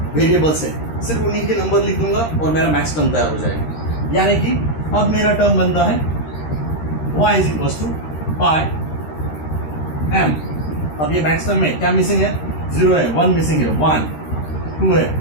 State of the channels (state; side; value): late; right; 13 ms